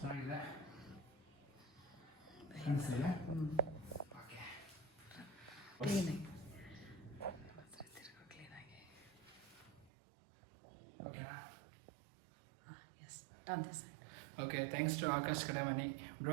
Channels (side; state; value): left; drops out; at 9.9 s